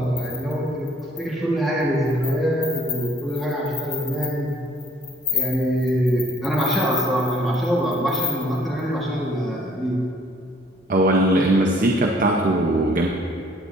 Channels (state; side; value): normal; both; correlation 0.59